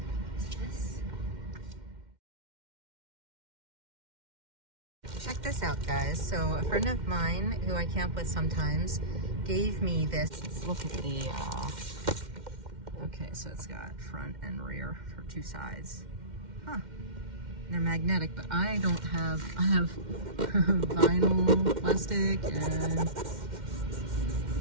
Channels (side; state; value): left; late; 2.1 ms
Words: Check this out, guys. So a friend of mine who I camp with sometimes gave me this. Let's look at the, okay, so it's got front and rear for 2 sides. Huh. They're magnetic, but I don't have, I have vinyl, plastic, and